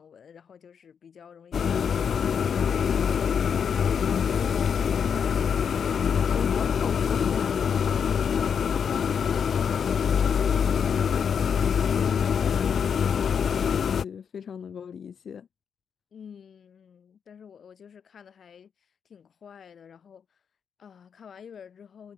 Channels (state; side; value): quieter; right; 7.1 dB